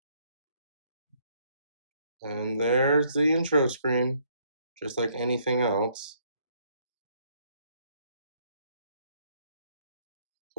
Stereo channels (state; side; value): inverted; both; correlation -0.68